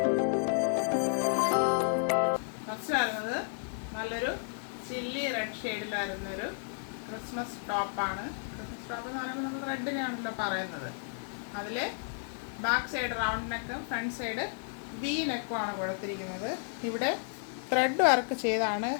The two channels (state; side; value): silent; right; 56 dB below the other